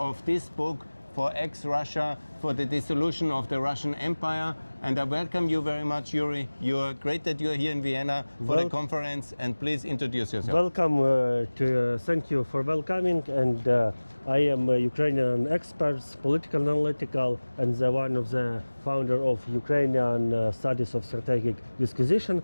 of this book for ExRussia, for the dissolution of the Russian Empire. And I welcome you very much, Iuri. You're great that you're here in Vienna for the conference, and please introduce yourself. Welcome, thank you for welcoming, and I am a Ukrainian expert, political analytical, and one of the founder of Ukrainian Studies of Strategic Disquisition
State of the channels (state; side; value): inverted; both; correlation -1.00